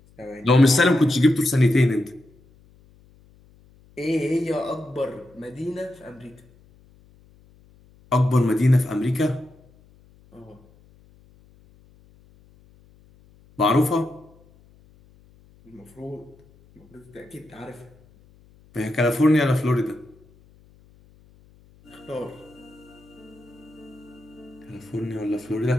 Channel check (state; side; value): noise; left; hum, 28 dB below the sound